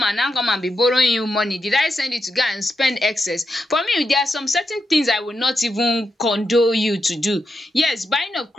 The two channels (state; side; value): normal; both; correlation 0.86